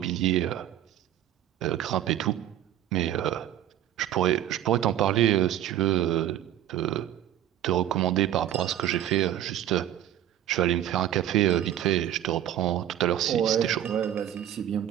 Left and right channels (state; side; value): quieter; left; 11.9 dB